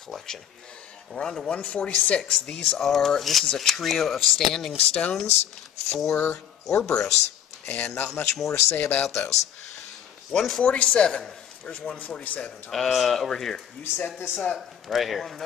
And we're on to 146. This is a trio of standing stones for Orboros, and not much more to say about those. 147. Where's 147, Thomas? Over here. You set this up. Right here. I wanna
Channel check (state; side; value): quieter; right; 9.5 dB